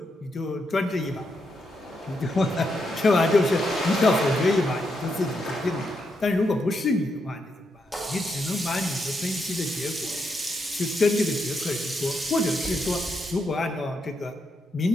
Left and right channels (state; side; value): normal; both; correlation 0.81